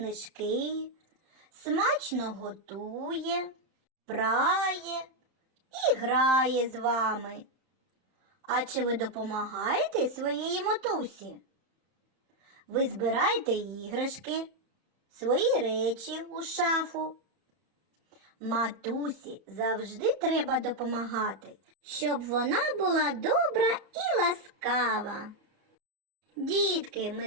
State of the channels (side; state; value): left; late; 31 ms